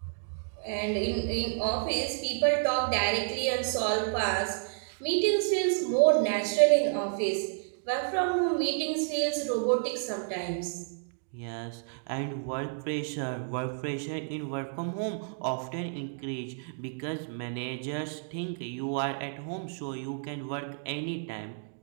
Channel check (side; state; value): left; silent; digital silence